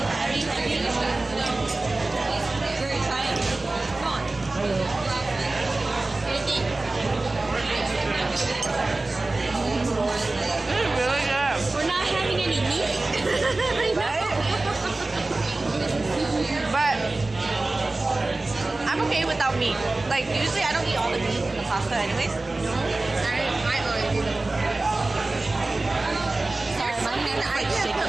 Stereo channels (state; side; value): quieter; left; 3.1 dB